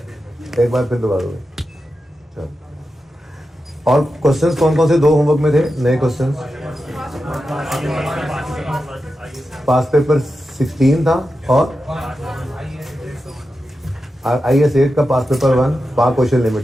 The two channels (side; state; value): both; normal; correlation 0.90